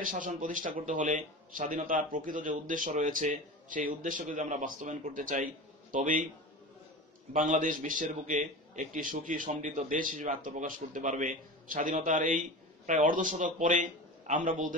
শাসন প্রতিষ্ঠা করতে হলে স্বাধীনতার প্রকৃত যে উদ্দেশ্য রয়েছে, সেই উদ্দেশ্যকে যদি আমরা বাস্তবায়ন করতে চাই, তবেই বাংলাদেশ বিশ্বের বুকে একটি সুখী সমৃদ্ধ দেশ হিসেবে আত্মপ্রকাশ করতে পারবে। স্বাধীনতার এই প্রায় অর্ধশতক পরে আমরা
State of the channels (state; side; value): normal; both; correlation 0.31